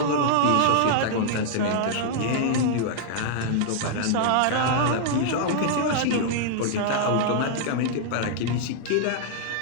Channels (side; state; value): both; different; correlation -0.01